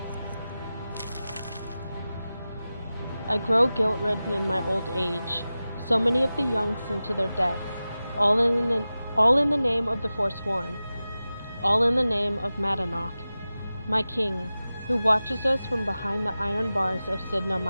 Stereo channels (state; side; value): inverted; both; correlation -0.95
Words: I grow guilt-ridden in my old age. So many of the young sent to their deaths, all in the name of the Forsworn, all in the name of Madanach, my king, who watches us from behind the iron bars of Sidna